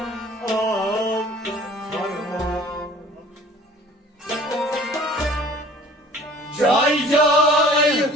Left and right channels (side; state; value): both; normal; correlation 0.49